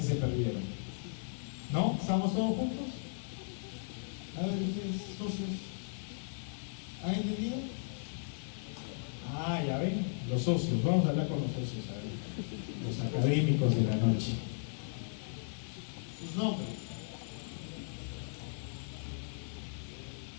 se perdieron. ¿No? ¿Estamos todos juntos? A ver, ustedes, socios, ¿han entendido? Ah, ya ven, los socios. Vamos a hablar con los socios, a ver, los académicos de la noche. Sus nombres.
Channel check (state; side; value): silent; right; digital silence